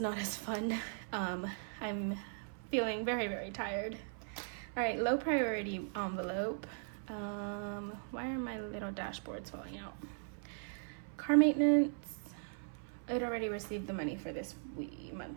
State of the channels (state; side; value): silent; left; 52 dB below the other